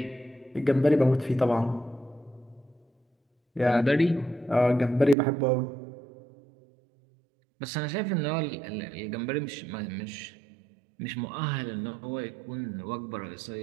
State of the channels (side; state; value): left; drops out; at 5.2 s